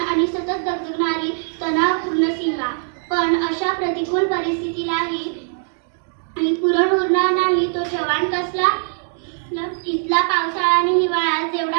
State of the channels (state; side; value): silent; left; 58 dB below the other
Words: आणि सतत दगदगणारी तणावपूर्ण सीमा. पण अशा प्रतिकूल परिस्थितीलाही पुरण उरणार नाही तो जवान कसला. इथला पावसाळा आणि हिवाळा